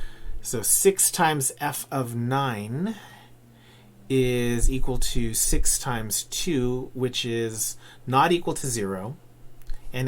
So 6 times f of 9 is equal to 6 times 2, which is not equal to 0, and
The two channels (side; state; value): both; identical; correlation 1.00